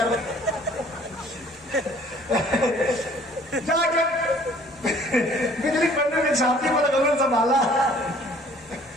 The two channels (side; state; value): both; normal; correlation 0.55